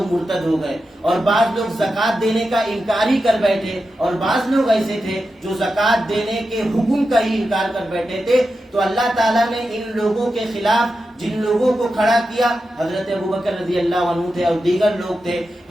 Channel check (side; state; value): both; normal; correlation 0.90